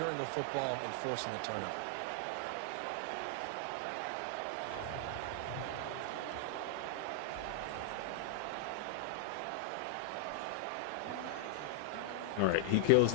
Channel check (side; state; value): both; different; correlation 0.00